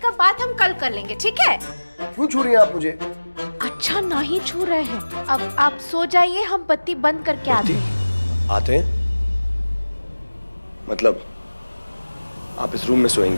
बात हम कल कर लेंगे, ठीक है? क्यों छू रही हैं आप मुझे? अच्छा, नहीं छू रहे हैं। अब आप सो जाइए, हम बत्ती बंद करके आते हैं। आते हैं? मतलब आप इस रूम में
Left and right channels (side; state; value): both; inverted; correlation -1.00